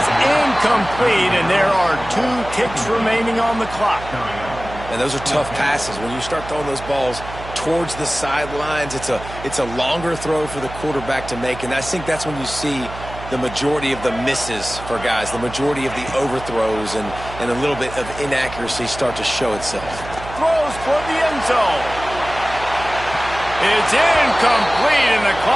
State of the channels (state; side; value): noise; right; hum, 13 dB below the sound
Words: incomplete, and there are 2 ticks remaining on the clock. And those are tough passes. When you start throwing those balls towards the sidelines, it's a longer throw for the quarterback to make, and I think that's when you see the majority of the misses for guys, the majority of the overthrows and a little bit of inaccuracy start to show itself. Throws for the end zone. It's incomplete, and the